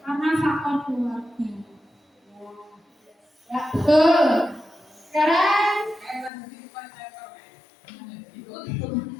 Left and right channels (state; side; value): drops out; right; at 6.3 s